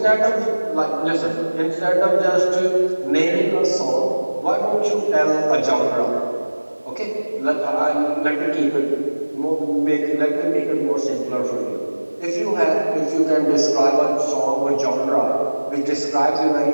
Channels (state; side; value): inverted; both; correlation -1.00